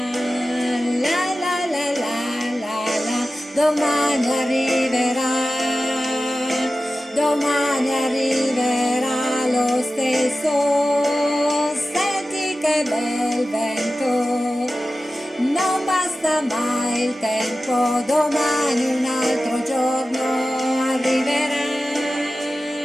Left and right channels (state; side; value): normal; both; correlation 0.94